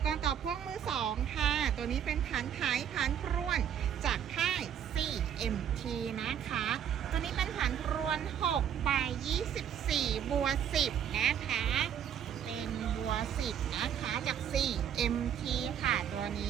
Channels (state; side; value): quieter; left; 9.2 dB